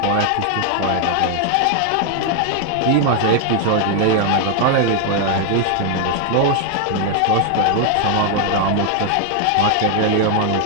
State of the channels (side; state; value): both; different; correlation 0.00